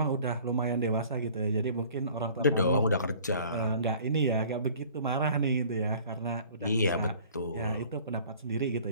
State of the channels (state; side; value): inverted; both; correlation -0.51